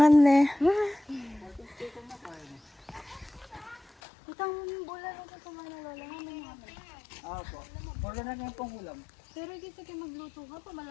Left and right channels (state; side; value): drops out; right; at 3.9 s